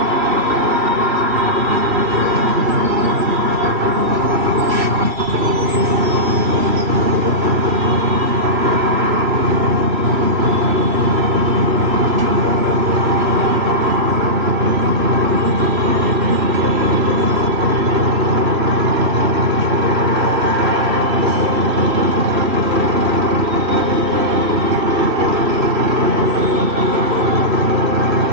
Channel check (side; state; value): left; late; 3.1 ms